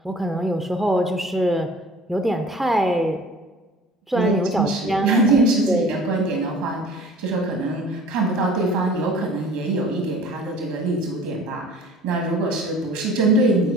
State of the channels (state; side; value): normal; both; correlation 0.46